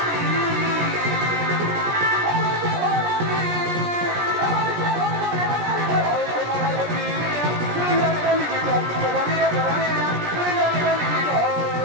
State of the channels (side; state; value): left; late; 17 ms